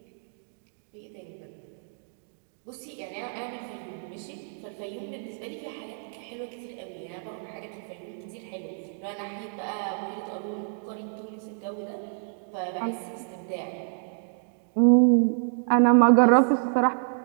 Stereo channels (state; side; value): silent; left; digital silence